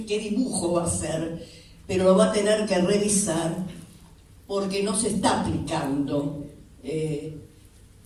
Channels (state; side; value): identical; both; correlation 1.00